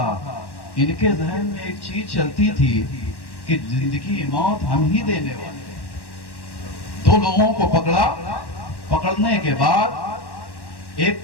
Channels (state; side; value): late; right; 1.1 ms